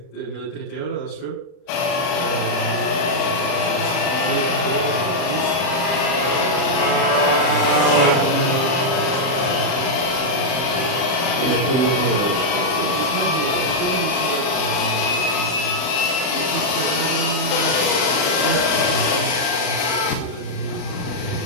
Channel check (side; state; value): right; late; 39 ms